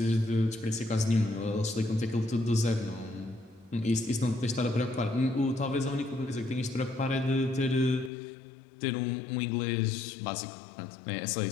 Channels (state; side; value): drops out; right; at 8.1 s